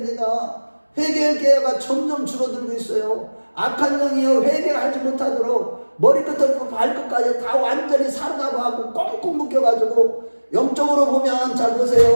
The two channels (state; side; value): inverted; both; correlation -1.00